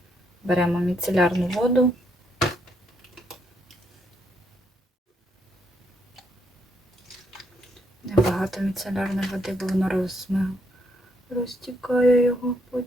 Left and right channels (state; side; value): normal; both; correlation 0.75